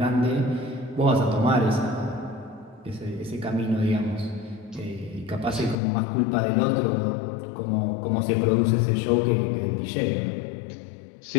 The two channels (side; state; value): right; drops out; at 5.8 s